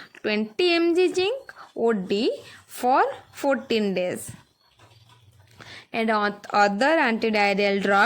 20 mg zinc OD for 14 days. And other antidiarrheal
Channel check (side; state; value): both; identical; correlation 1.00